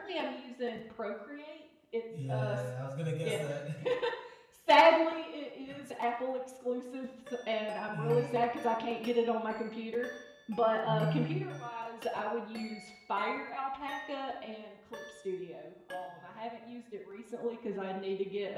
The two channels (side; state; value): both; identical; correlation 1.00